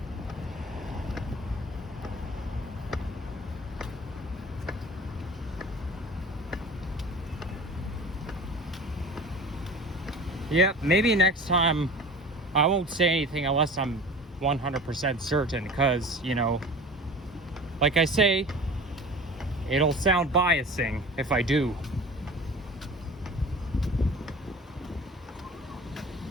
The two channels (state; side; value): normal; both; correlation 0.39